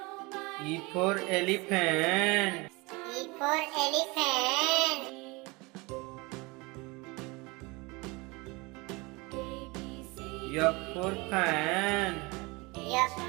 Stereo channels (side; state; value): left; quieter; 25.4 dB